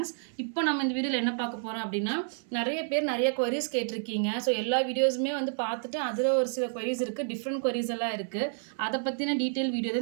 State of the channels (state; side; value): silent; left; 58 dB below the other